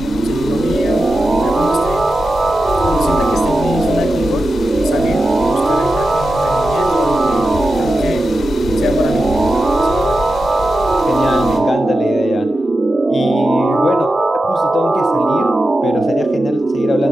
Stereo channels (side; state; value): both; normal; correlation 0.91